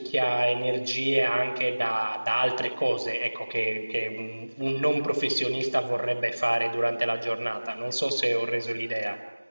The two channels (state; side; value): inverted; both; correlation -1.00